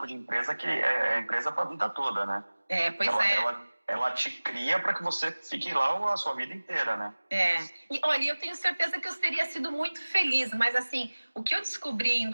de empresa que é empresa para a vida toda, né? Ela te cria para que você fique lá a sua vida inteira, né? E olha, eu tenho certeza que eu teria sido muito feliz, mas assim, o que eu descobri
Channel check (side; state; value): both; inverted; correlation -1.00